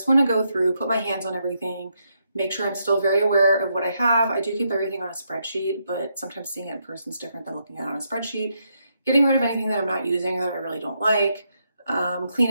want to go through, put my hands on everything, make sure I'm still very aware of what I have. I do keep everything on a spreadsheet, but sometimes seeing it in person is different than looking at it on a spreadsheet. Getting rid of anything that I'm not using or that I really don't like, clean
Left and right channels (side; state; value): both; inverted; correlation -0.79